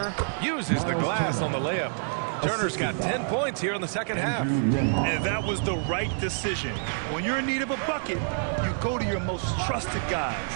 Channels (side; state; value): left; silent; digital silence